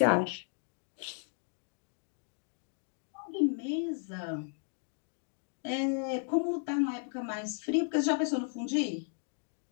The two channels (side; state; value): right; silent; 55 dB below the other